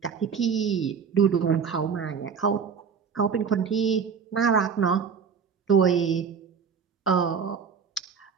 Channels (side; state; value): left; quieter; 6.4 dB